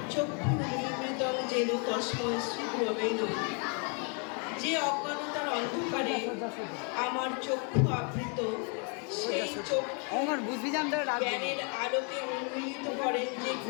চক্ষুর্নির্মৃতং যেন তস্মৈ শ্রীগুরবে নমঃ। যে অজ্ঞানতার অন্ধকারে আমার চক্ষু আবৃত, সেই চক্ষু জ্ঞানের আলোকে উন্মীলিত করেন যে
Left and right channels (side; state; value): right; quieter; 36.8 dB